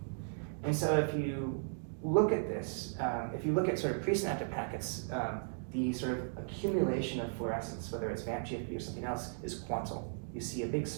And so if you look at this, if you look at sort of presynaptic packets, the sort of accumulation of fluorescence, whether it's VAMP GFP or something else, is quantal. You see a big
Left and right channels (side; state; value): left; silent; digital silence